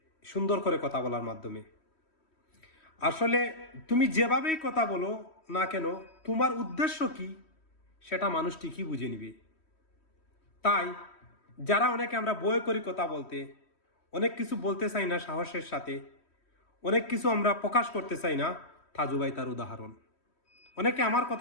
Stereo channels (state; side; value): late; right; 3.1 ms